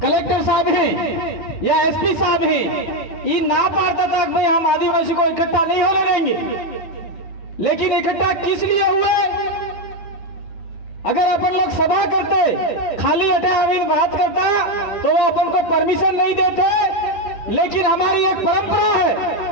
कलेक्टर साहब हैं या एसपी साहब हैं, ये ना पाता था कि भाई हम आदिवासी को इकट्ठा नहीं होने देंगे। लेकिन इकट्ठा किस लिए हुए? अगर अपन लोग सभा करते खाली अटे अमीन बात करता तो वो अपन को परमिशन नहीं देते। लेकिन हमारी एक परंपरा है,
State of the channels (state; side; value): late; right; 9.7 ms